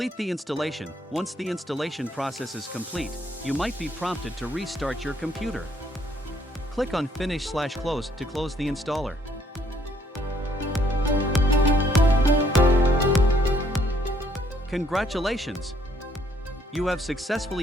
the installation. Once the installation process is complete, you might be prompted to restart your computer. Click on Finish/Close to close the installer. Congratulations! You have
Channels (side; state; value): both; normal; correlation 0.67